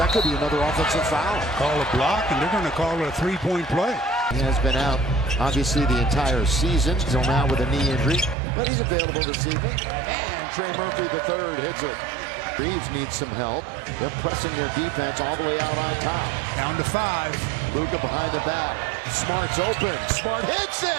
could be another offensive foul. Call a block, and they're going to call it a three-point play. He has been out, obviously, the entire season, until now with a knee injury. But he's available this evening. And Trey Murphy, the third, hits it. Reeves needs some help. They're pressing their defense all the way out on top. Down to 5. Luka behind the back. Smart's open. Smart hits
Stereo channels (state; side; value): drops out; left; at 8.3 s